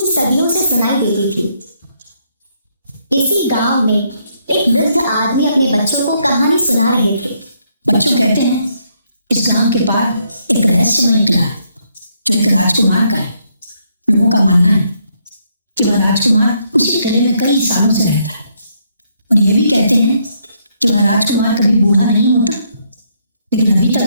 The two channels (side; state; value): both; inverted; correlation -0.74